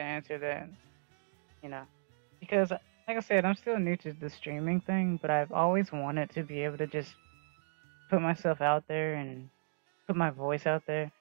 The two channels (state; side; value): silent; left; digital silence